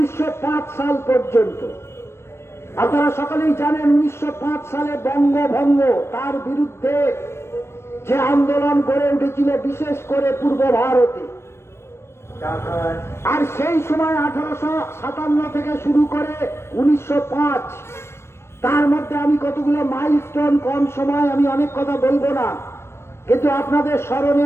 সাল পর্যন্ত। আপনারা সকলেই জানেন 1905 সালে বঙ্গভঙ্গ, তার বিরুদ্ধে যে আন্দোলন গড়ে উঠেছিল বিশেষ করে পূর্ব ভারতে। আর সেই সময় 1857 থেকে শুরু করে 1905, তার মধ্যে আমি কতগুলো মাইলস্টোন, কম সময় আমি অনেক কথা বলবো না, কিন্তু আপনাদের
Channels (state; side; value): late; right; 0.12 ms